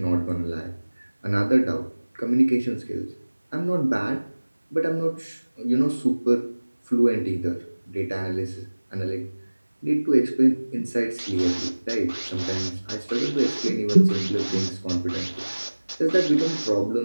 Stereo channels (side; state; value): both; inverted; correlation -1.00